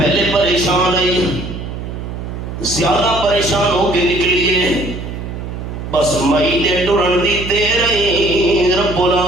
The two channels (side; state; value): right; noise; hum, 8 dB below the sound